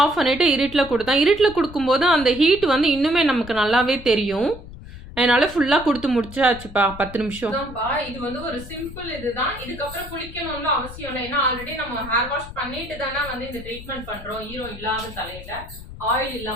ஆஃப் பண்ணிவிட்டு இருட்டில் கொடுத்தேன். இருட்டில் கொடுக்கும்போது அந்த ஹீட் வந்து இன்னுமே நமக்கு நல்லாவே தெரியும். அதனால ஃபுல்லாக கொடுத்து முடிச்சாச்சுப்பா 10 நிமிஷம். இது வந்து ஒரு சிம்பிள் இதுதான். இதுக்கப்புறம் குளிக்கணும்னு அவசியம் இல்லை. ஏன்னா ஆல்ரெடி நம்ம ஹேர் வாஷ் பண்ணிட்டு தானே வந்து இந்த ட்ரீட்மெண்ட் பண்ணுறோம். ஈரம் இல்லாத தலையில ஆயில்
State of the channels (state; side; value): noise; left; rumble, 14 dB below the sound